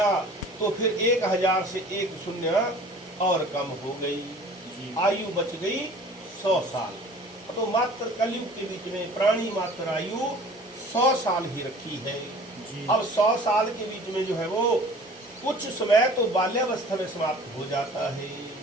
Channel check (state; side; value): normal; both; correlation 0.46